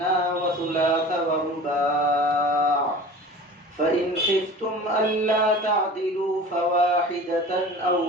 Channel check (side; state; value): both; normal; correlation 0.40